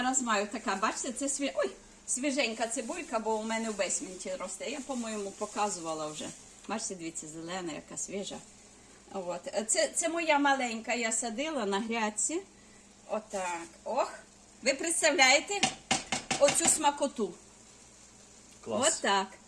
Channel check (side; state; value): both; identical; correlation 1.00